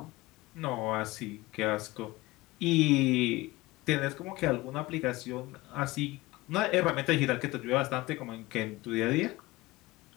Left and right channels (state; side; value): quieter; right; 20.1 dB